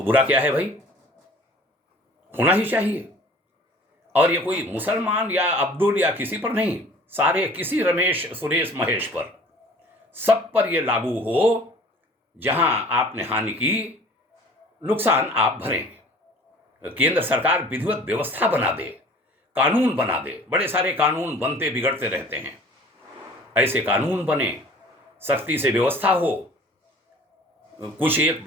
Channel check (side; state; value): both; normal; correlation 0.48